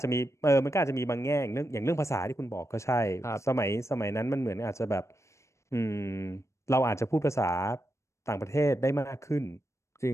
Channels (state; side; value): late; right; 0.14 ms